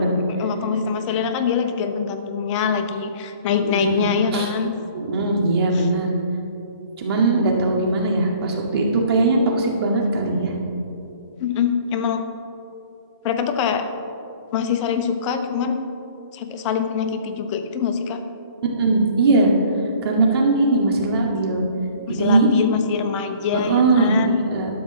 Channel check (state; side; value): inverted; both; correlation -0.51